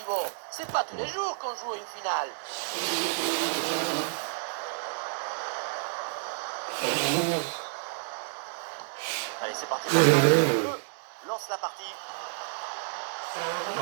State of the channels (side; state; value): left; silent; digital silence